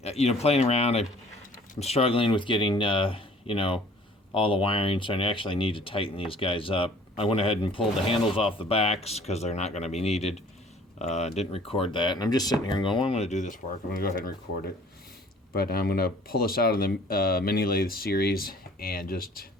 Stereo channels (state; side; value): normal; both; correlation 0.53